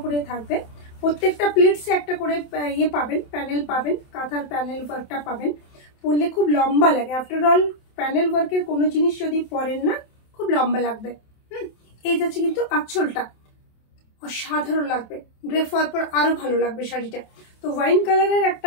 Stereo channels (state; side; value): late; right; 27 ms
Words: করে থাকবে। প্রত্যেকটা প্লেটসে একটা করে ইয়ে পাবেন, প্যানেল পাবেন, কাঁথার প্যানেল ওয়ার্কটা পাবেন। পরলে খুব লম্বা লাগে। আফটার অল প্যানেল ওয়ার্কের কোনো জিনিস যদি পরেন না খুব লম্বা লাগবে। এই যাচ্ছে কিন্তু আঁচলটা অসাধারণ লাগবে, ড্রেপ হওয়ার পর আরো ভালো লাগবে শাড়িটা। তো ওয়াইন কালারের